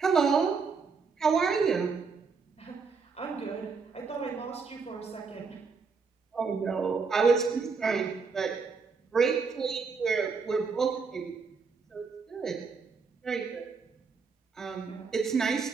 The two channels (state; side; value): quieter; left; 5.1 dB